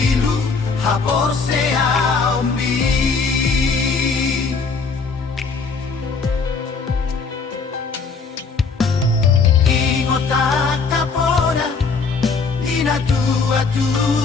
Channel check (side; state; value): right; quieter; 4.8 dB